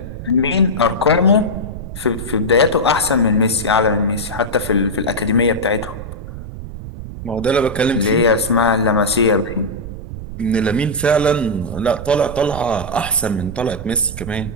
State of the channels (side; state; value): right; noise; rumble, 10 dB below the sound